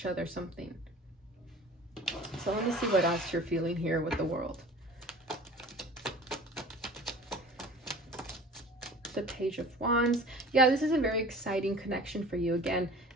other something. So let me see what else you're feeling here with the World. The Page of Wands. Yeah, this is a very exciting connection for you. Again,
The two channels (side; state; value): both; normal; correlation 0.43